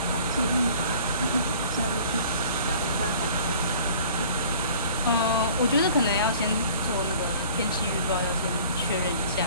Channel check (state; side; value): inverted; both; correlation -0.49